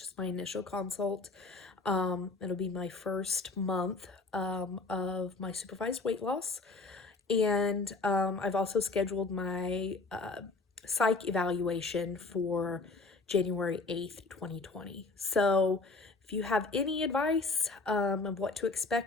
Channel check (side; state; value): right; quieter; 3.7 dB